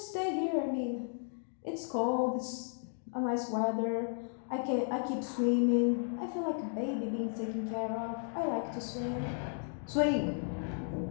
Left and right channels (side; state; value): right; silent; 55 dB below the other